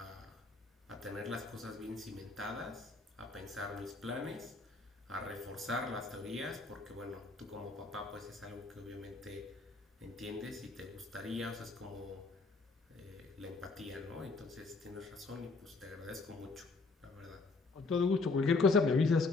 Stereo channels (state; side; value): quieter; right; 3.7 dB